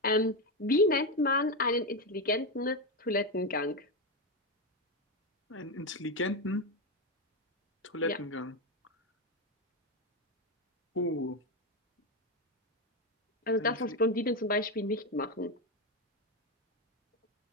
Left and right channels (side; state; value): both; normal; correlation 0.10